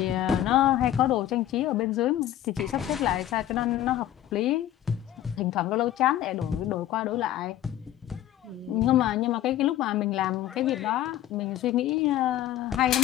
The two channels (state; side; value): quieter; right; 12.5 dB